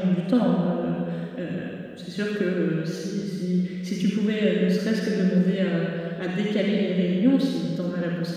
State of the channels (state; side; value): identical; both; correlation 1.00